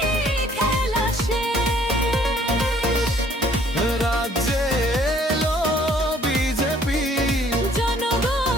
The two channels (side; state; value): both; normal; correlation 0.59